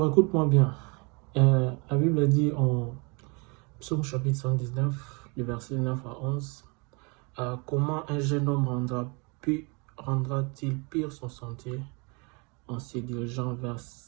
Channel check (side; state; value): left; quieter; 31.2 dB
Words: écoute-moi bien. La Bible dit en Psaume chapitre 119, le verset 9 à 11, comment un jeune homme rendra-t-il pire son sentier en se dirigeant vers